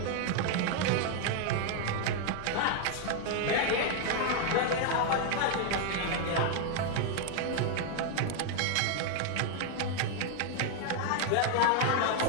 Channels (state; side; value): different; both; correlation 0.00